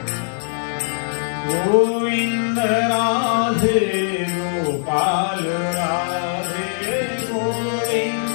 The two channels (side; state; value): right; silent; digital silence